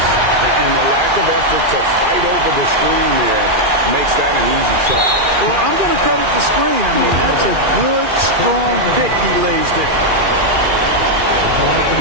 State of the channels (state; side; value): late; left; 2.4 ms